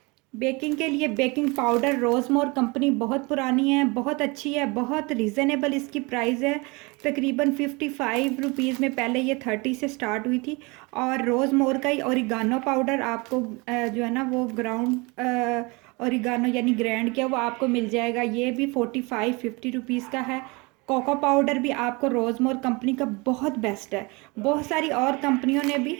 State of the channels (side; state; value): left; quieter; 26.9 dB